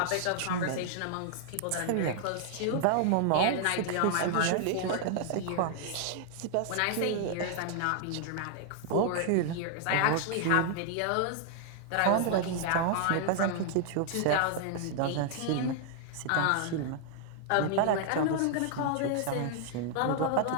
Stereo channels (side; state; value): both; different; correlation 0.00